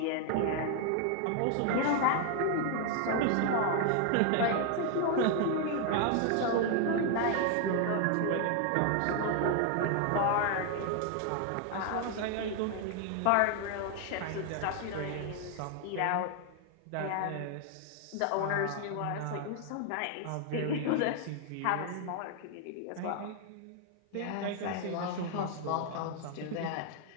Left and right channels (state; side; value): different; both; correlation 0.00